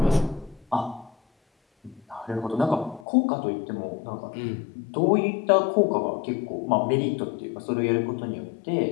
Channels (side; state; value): right; drops out; at 3.1 s